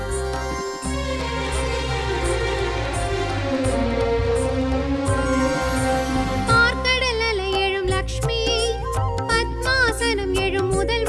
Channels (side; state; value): both; identical; correlation 1.00